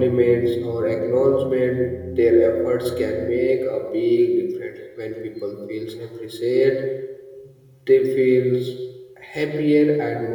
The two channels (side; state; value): both; identical; correlation 1.00